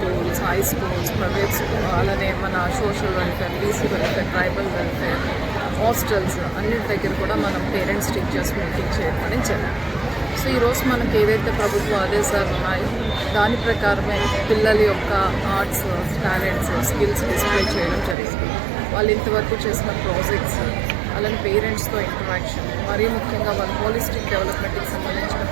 high schools, private school, అలానే మన social welfare, BC welfare, tribal welfare, hostels అన్నిటి దగ్గర కూడా మనం పేరెంట్స్ టీచర్స్ మీటింగ్ చేయడం జరిగింది. సో ఈరోజు మనకి ఏదైతే ప్రభుత్వ ఆదేశాలు ఉన్నాయో దాని ప్రకారమే పిల్లల యొక్క ఆర్ట్స్, టాలెంట్స్, స్కిల్స్ డిస్ప్లే చేయడం జరిగింది. వాళ్ళు ఇంతవరకు చేసిన ప్రాజెక్ట్స్, అలానే పేరెంట్స్తో ఇంటరాక్షన్, మరీ ముఖ్యంగా వాళ్ళ హోలిస్టిక్ డెవలప్మెంట్కి సంబంధించిన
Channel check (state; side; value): drops out; left; at 18.2 s